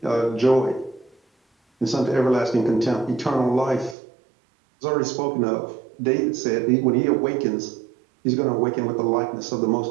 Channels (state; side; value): drops out; left; at 4.0 s